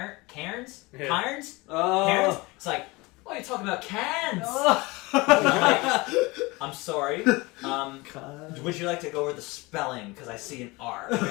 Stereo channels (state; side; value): quieter; right; 23.6 dB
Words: Cairns? Oh. Cairns?" It's like, "What are you talking about, Cairns?" Like, I'm sorry. Would you like to go over the spelling? Because I see an R. It's